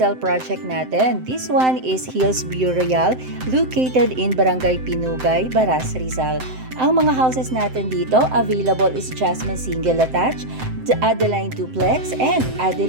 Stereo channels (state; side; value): late; left; 7.8 ms